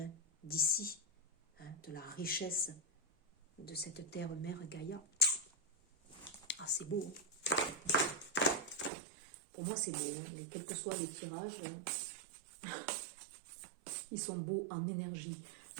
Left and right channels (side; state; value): left; drops out; at 8.9 s